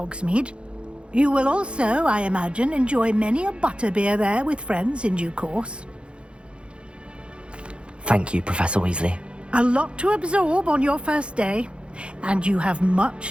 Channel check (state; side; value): late; left; 0.057 ms